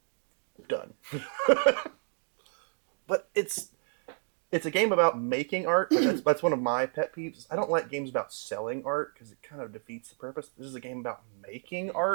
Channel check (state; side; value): silent; left; 57 dB below the other